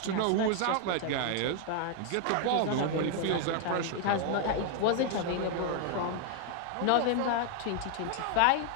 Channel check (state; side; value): different; both; correlation 0.00